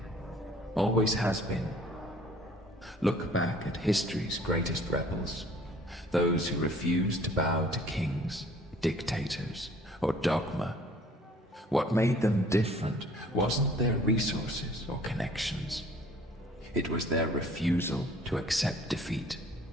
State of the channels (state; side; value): normal; both; correlation 0.54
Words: Always has been. Look back at history's greatest rebels, those who refused to bow to kings, dictators, or dogma. What made them different wasn't their resources or connections. It was their refusal to accept defeat,